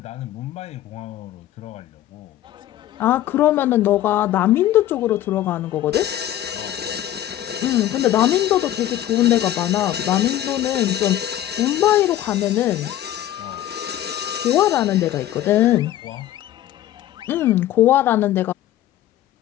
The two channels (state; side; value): quieter; right; 12.9 dB